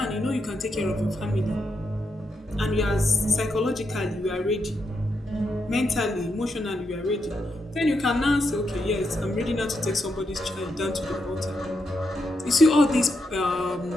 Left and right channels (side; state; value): both; normal; correlation 0.82